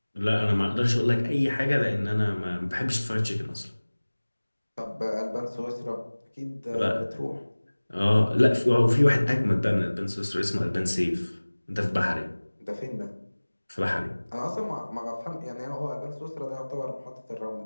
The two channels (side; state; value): both; inverted; correlation -1.00